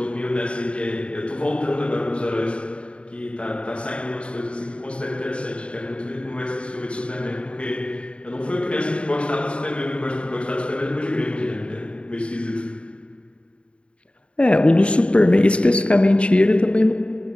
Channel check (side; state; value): right; late; 0.058 ms